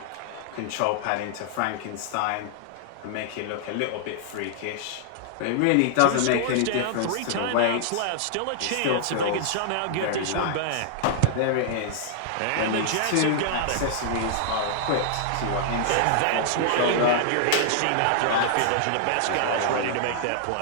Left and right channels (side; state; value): both; different; correlation -0.01